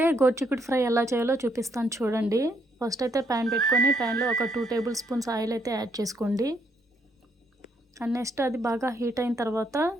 గోర్చిక్కుడు ఫ్రై ఎలా చేయాలో చూపిస్తాను, చూడండి. ఫస్ట్ అయితే ప్యాన్ పెట్టుకొని ప్యాన్లో ఒక 2 టేబుల్ స్పూన్స్ ఆయిల్ అయితే యాడ్ చేసుకోండి. అండ్ నెక్స్ట్ అది బాగా హీట్ అయిన తర్వాత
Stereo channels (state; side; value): normal; both; correlation 0.73